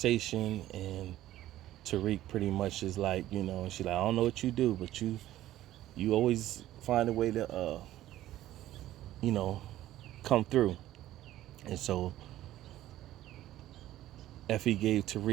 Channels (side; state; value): left; quieter; 14.1 dB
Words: and Tariq pretty much is like, you know, and she's like, I don't know what you do, but you always find a way to, you know, come through. And so Effie gave